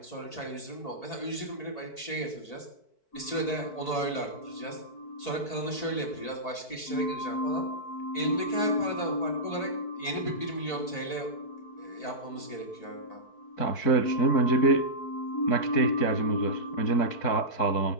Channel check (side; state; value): right; late; 4.6 ms